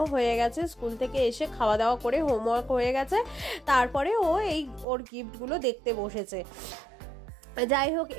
হয়ে গেছে, স্কুল থেকে এসে খাওয়া দাওয়া করে হোমওয়ার্ক হয়ে গেছে। তারপরে ও ওর গিফটগুলো দেখতে বসেছে। যাই হোক,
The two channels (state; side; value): drops out; left; at 4.9 s